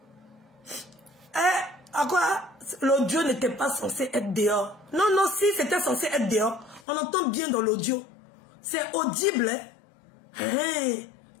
À quoi l'audio n'était pas censé être dehors? Non, non, si c'était censé être dehors, on entend bien dans l'audio. C'est audible. Hein?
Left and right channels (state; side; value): drops out; right; at 6.8 s